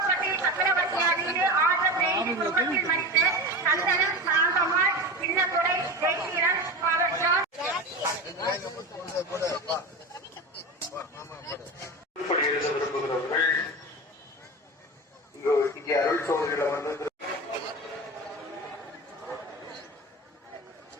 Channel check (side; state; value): both; normal; correlation 0.26